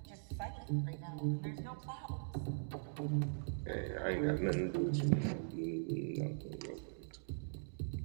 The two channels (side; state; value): left; silent; digital silence